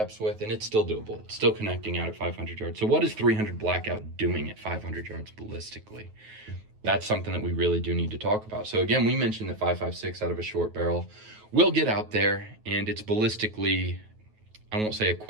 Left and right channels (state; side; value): late; left; 9.3 ms